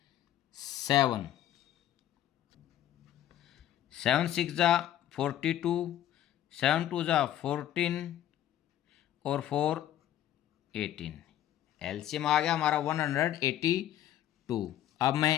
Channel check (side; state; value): right; quieter; 12.1 dB